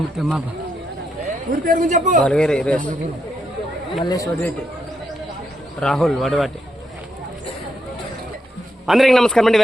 ఊరి పేరు గురించి చెప్పు. బలవేరు మల్లేష్ వడివేటి. రాహుల్ వడవాటి. అందరికీ నమస్కారం అండి.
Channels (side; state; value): both; normal; correlation 0.80